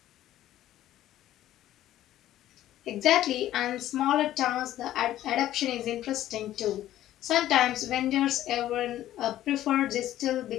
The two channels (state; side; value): quieter; right; 13.2 dB